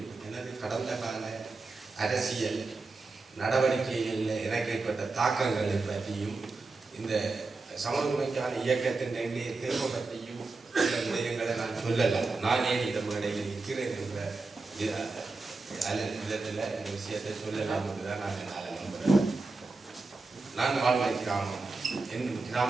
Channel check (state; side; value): quieter; left; 3.7 dB